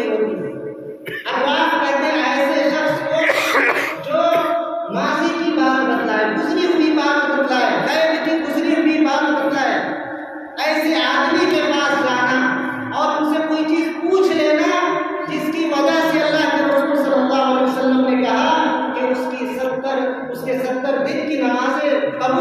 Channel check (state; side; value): identical; both; correlation 1.00